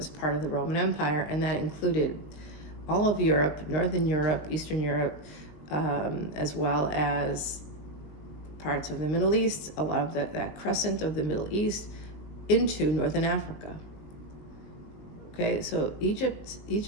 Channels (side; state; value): right; late; 20 ms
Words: part of the Roman Empire, and that included all of Europe, Northern Europe, Eastern Europe, as well as parts of the Middle East, a lot of that crescent of the Middle East into Northern Africa. Okay, so Egypt,